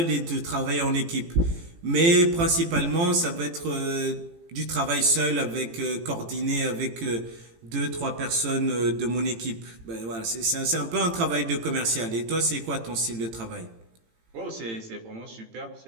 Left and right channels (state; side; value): late; left; 18 ms